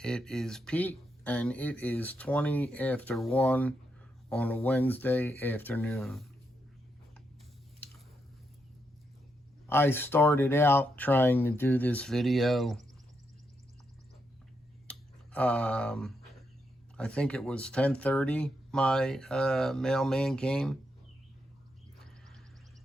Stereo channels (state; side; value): normal; both; correlation 0.81